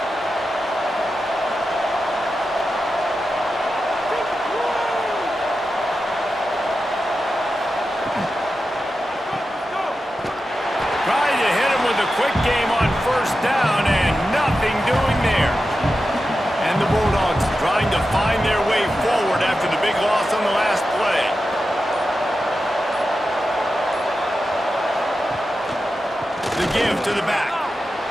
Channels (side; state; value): both; normal; correlation 0.91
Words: Trying to hit him with a quick game on first down, and nothing doing there. And the Bulldogs trying to find their way forward after the big loss on the last play. The give to the back.